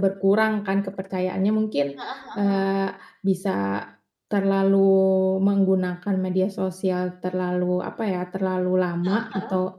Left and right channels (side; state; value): both; identical; correlation 1.00